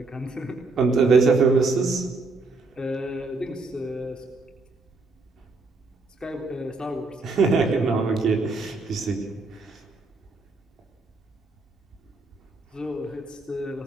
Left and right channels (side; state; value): left; quieter; 3.5 dB